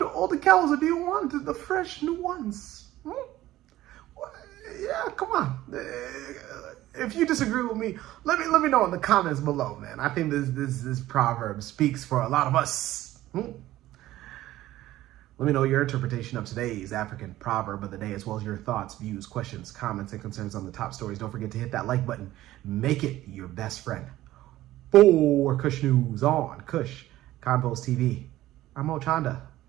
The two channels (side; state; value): left; quieter; 15.3 dB